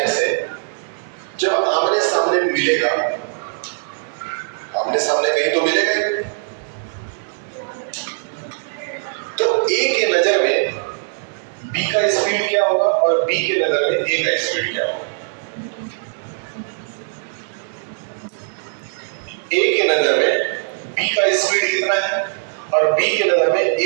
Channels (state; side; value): silent; left; digital silence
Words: से जब आमने सामने मिलेगा, आमने सामने कहीं तो मिलेगा ही, तो ए के नजर में बी का स्पीड क्या होगा और बी के नजर में ए का स्पीड क्या होगा। ए के नजर में बी का स्पीड कितना है और बी के नजर में